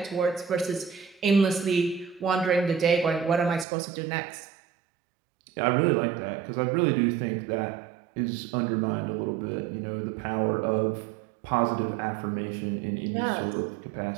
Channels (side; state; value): left; drops out; at 3.7 s